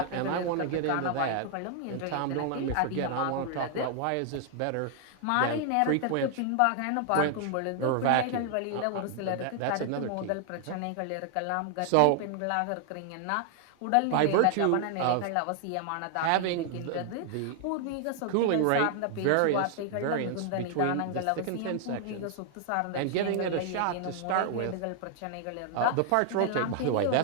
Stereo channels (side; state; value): both; different; correlation 0.00